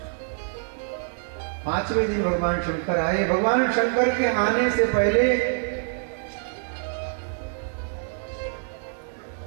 5वें दिन भगवान शंकर आए। भगवान शंकर के आने से पहले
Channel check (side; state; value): left; silent; digital silence